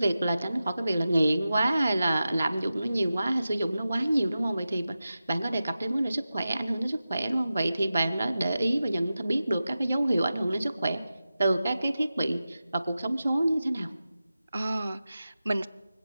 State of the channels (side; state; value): both; inverted; correlation -0.93